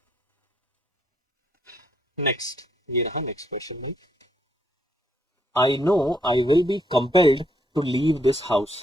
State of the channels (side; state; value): both; normal; correlation 0.73